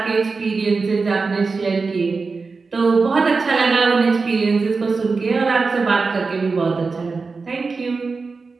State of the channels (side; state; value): left; quieter; 4.4 dB